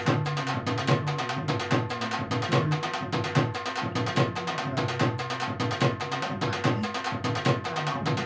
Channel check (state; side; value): identical; both; correlation 1.00